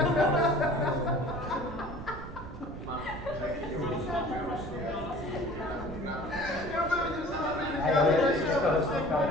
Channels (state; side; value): noise; right; rumble, 11 dB below the sound